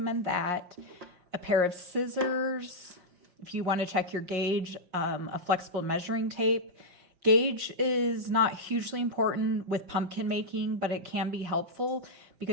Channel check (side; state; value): left; late; 5.5 ms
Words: that. A pair of scissors, if you want to check your gauge, a flexible measuring tape. Gauge is not hugely important with pumpkin making, but it can be helpful